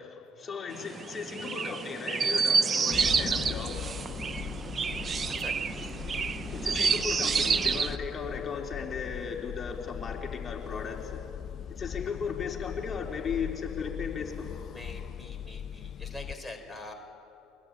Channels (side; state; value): both; normal; correlation 0.75